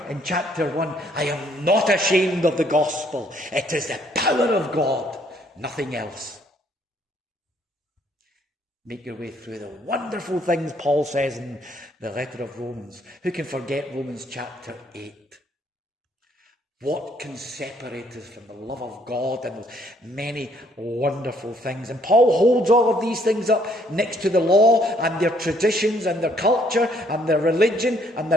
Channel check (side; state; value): both; normal; correlation 0.66